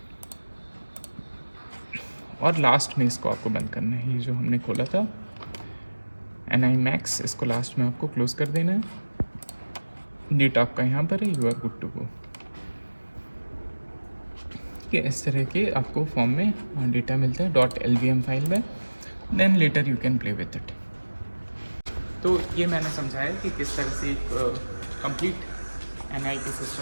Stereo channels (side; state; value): both; inverted; correlation -1.00